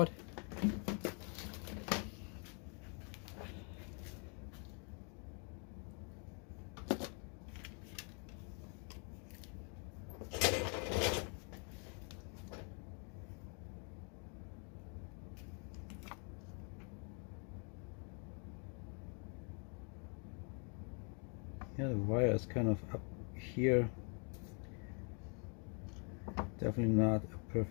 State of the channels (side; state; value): right; quieter; 38.3 dB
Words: Yeah, the wire is kind of up here. Definitely not a